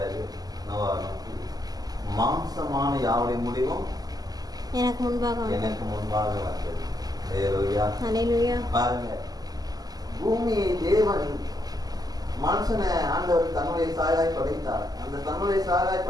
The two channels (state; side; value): late; left; 0.18 ms